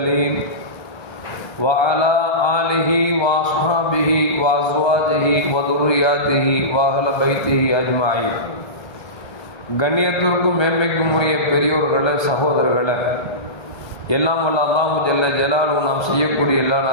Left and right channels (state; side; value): late; right; 1.3 ms